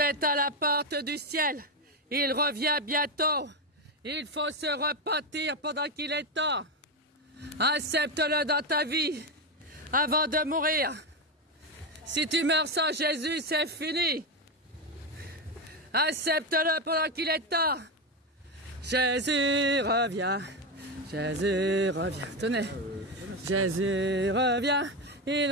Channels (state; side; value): normal; both; correlation 0.11